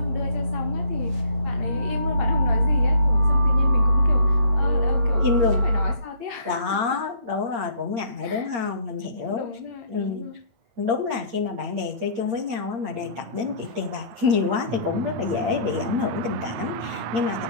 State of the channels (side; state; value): left; late; 8.6 ms